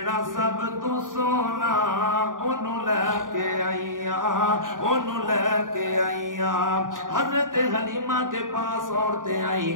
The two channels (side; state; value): left; late; 0.89 ms